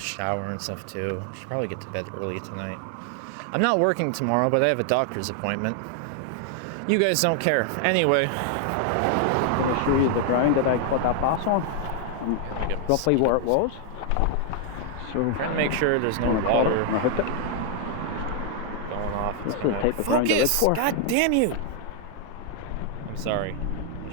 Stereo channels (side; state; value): both; different; correlation 0.00